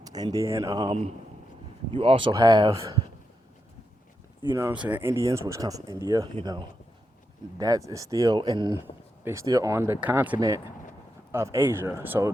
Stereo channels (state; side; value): normal; both; correlation 0.85